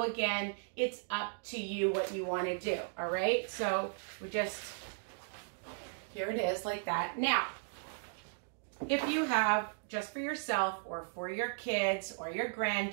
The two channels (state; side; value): silent; left; digital silence